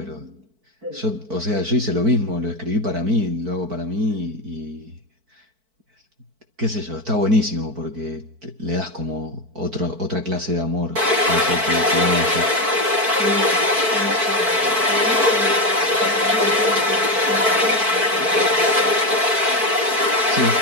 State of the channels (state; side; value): late; left; 4.5 ms